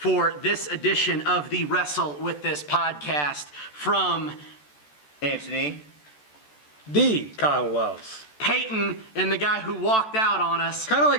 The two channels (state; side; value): late; right; 14 ms